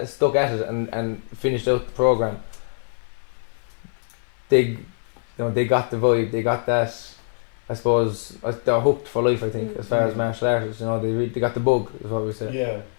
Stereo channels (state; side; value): silent; right; 58 dB below the other